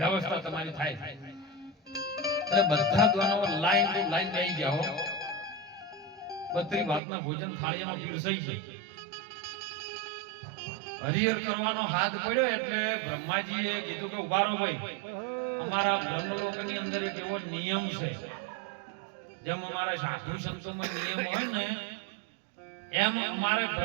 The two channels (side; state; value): left; drops out; at 7.0 s